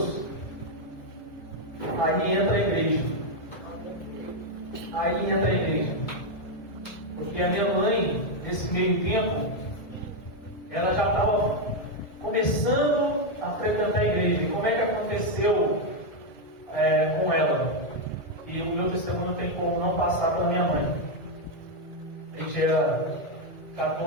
aí entra a igreja. Aí entra a igreja. Porque a minha mãe, nesse meio tempo, ela já estava começando a frequentar a igreja. E como é que aconteceu com ela? E o meu testemunho não tem como não passar para a minha mãe. A gente era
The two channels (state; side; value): late; right; 1.9 ms